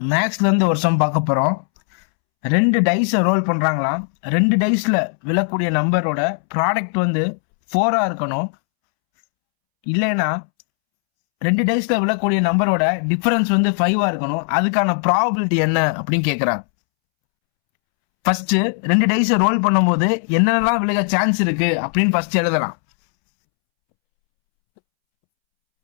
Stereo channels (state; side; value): silent; right; 67 dB below the other